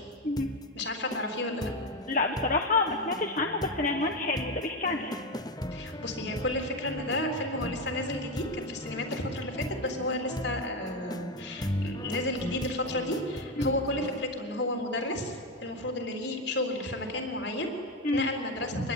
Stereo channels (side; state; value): both; normal; correlation 0.13